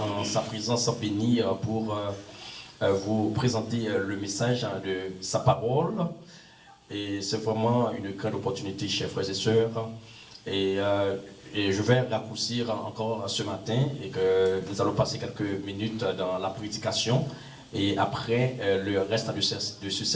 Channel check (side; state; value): both; identical; correlation 1.00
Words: en sa présence bénie pour vous présenter le message de sa parole. Et c'est vraiment une grande opportunité, chers frères et sœurs. Et je vais raccourcir encore ce matin et que nous allons passer quelques minutes dans la prédication. Et après le reste de ce